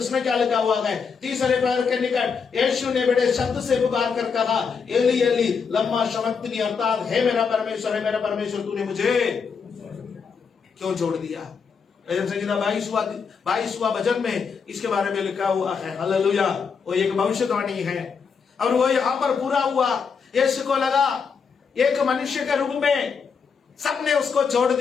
क्या लिखा हुआ है? तीसरे पैर के निकट यीशु ने बड़े शब्द से पुकार कर कहा, एली एली लम्मा शबक्तनी, अर्थात हे मेरा परमेश्वर तूने मुझे क्यों छोड़ दिया। भजन संहिता 22वां भजन में इसके बारे में लिखा हुआ है। हालेलुया। वो एक भविष्यवाणी है और वो यहां पर पूरा हुआ। यीशु को लगा एक मनुष्य के रूप में सबने उसको छोड़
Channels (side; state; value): right; quieter; 5.9 dB